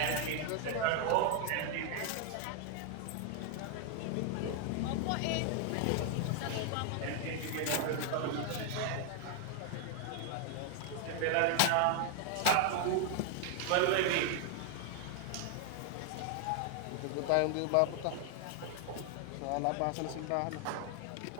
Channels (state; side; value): different; both; correlation 0.00